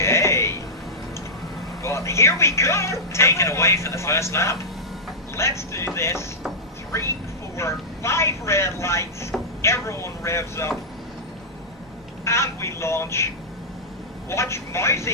Well, here we go. Taken away for the first lap. Let's do this. 3, 4, 5 red lights. Everyone revs up. And we launch. Watch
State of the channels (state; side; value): normal; both; correlation -0.10